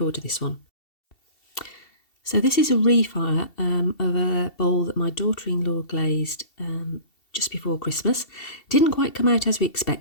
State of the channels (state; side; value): late; right; 2.7 ms